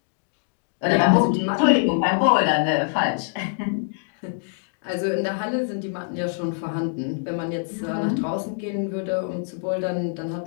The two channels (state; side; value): silent; right; digital silence